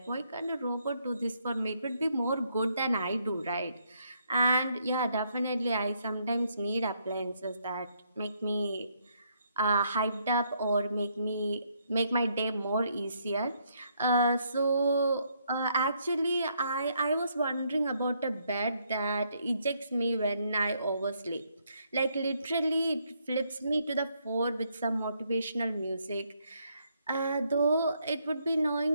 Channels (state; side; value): inverted; both; correlation -0.73